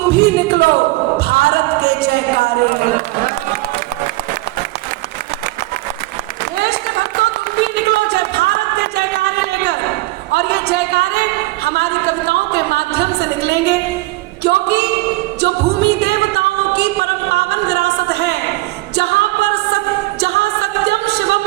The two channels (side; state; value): left; quieter; 20.2 dB